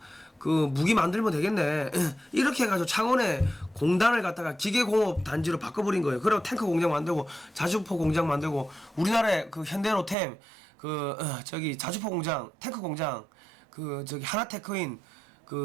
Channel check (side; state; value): left; drops out; at 10.2 s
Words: 그 무기 만들면 되겠네. 이렇게 해가지고 창원에 공단을 갖다가 기계공업 단지로 바꿔버린 거예요. 그리고 탱크 공장 만들고 자주포 공장 만들고 우리나라의 그 현대로템 그 저기 자주포 공장 탱크 공장 그 저기 하나테크인